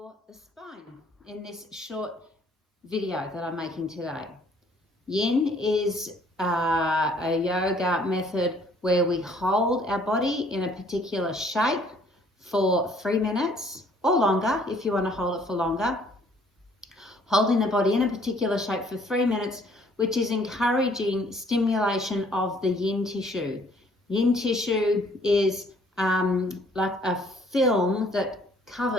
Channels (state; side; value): normal; both; correlation 0.60